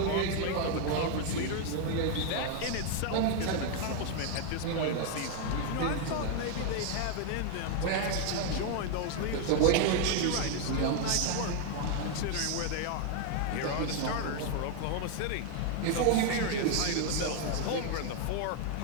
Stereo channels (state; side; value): different; both; correlation 0.00